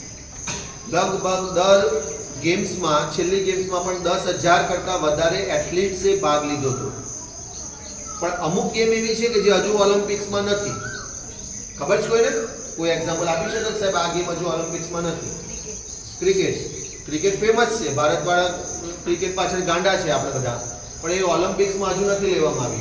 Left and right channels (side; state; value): both; identical; correlation 1.00